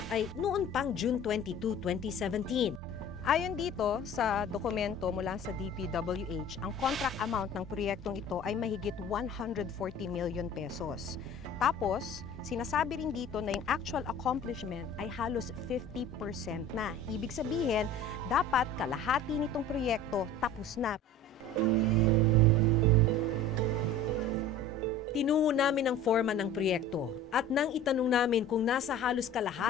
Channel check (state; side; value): normal; both; correlation 0.41